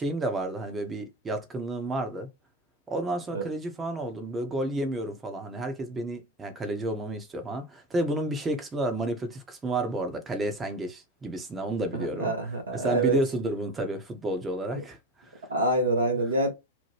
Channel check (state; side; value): normal; both; correlation 0.23